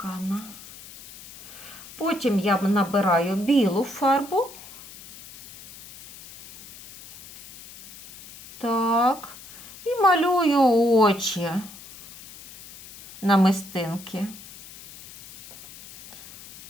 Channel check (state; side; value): noise; left; hiss, 18 dB below the sound